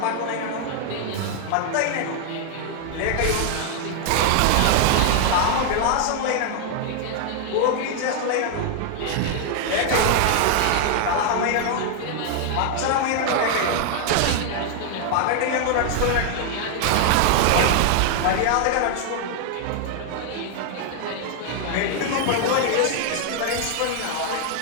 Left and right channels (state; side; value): different; both; correlation 0.00